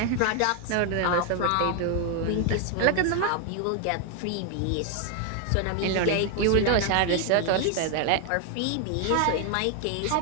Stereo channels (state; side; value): different; both; correlation 0.01